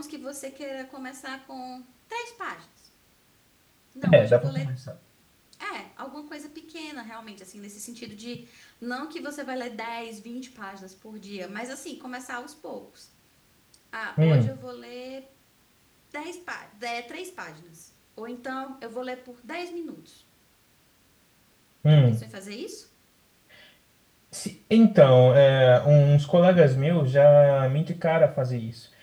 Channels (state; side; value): identical; both; correlation 1.00